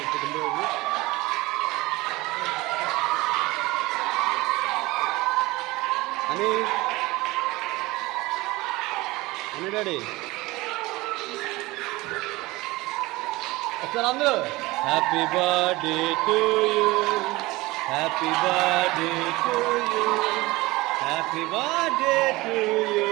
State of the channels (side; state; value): left; quieter; 20.8 dB